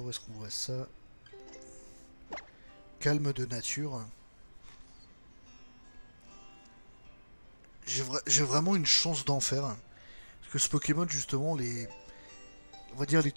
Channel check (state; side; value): inverted; both; correlation -1.00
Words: où est-ce qu'on voit ça? Calme de nature. J'ai vraiment une chance d'en faire. Parce que ce Pokémon, justement, on va dire les